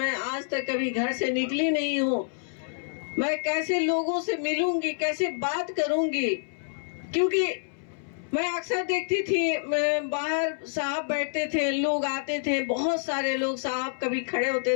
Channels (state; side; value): silent; right; 60 dB below the other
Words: आज तक कभी घर से निकली नहीं हूँ, मैं कैसे लोगों से मिलूंगी, कैसे बात करूंगी, क्योंकि मैं अक्सर देखती थी बाहर साहब बैठते थे, लोग आते थे, बहुत सारे लोग, साहब कभी खड़े होते